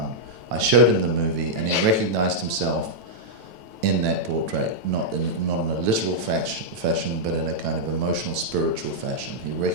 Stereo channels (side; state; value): left; late; 9.1 ms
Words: I showed him the movie, and he recognized himself in that portrait, not in a literal fashion, but in a kind of emotional, spiritual fashion. He